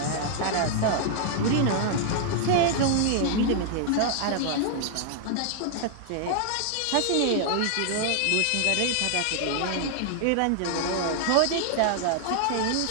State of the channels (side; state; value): both; different; correlation 0.00